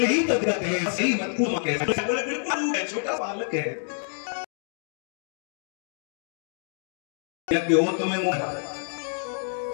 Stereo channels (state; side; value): silent; right; 60 dB below the other